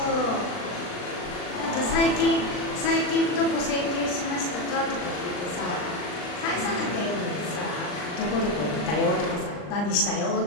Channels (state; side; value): late; right; 39 ms